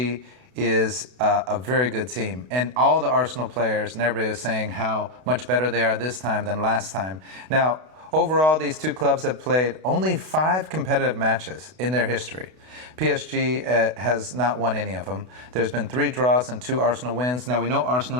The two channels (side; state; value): left; late; 32 ms